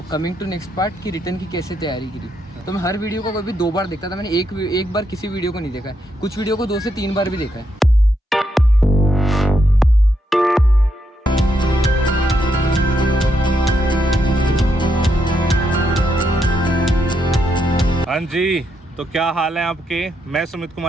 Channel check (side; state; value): both; normal; correlation 0.79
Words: coming to next part कि रिटर्न की कैसे तैयारी करी। तो मैं हर वीडियो को कभी 2 बार देखता था। मैंने एक बार किसी वीडियो को नहीं देखा है, कुछ वीडियो को 2 से 3 बार भी देखा है। हाँ जी, तो क्या हाल है आपके? मैं सुमित